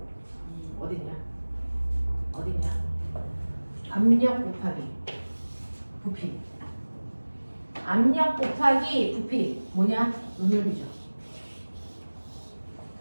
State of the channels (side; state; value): both; inverted; correlation -1.00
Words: 어딨냐? 어딨냐? 압력 곱하기 부피. 압력 곱하기 부피 뭐냐? 눈열비죠.